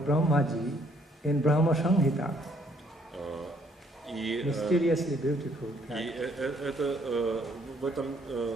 Brahmaji, in Brahma Samhita. Mysteriously beautiful. И это, в этом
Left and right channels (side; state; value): both; normal; correlation 0.65